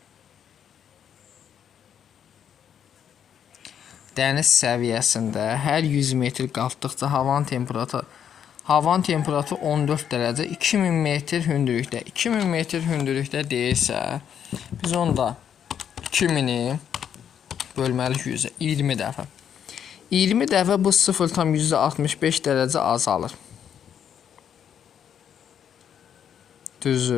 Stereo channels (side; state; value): right; quieter; 8.7 dB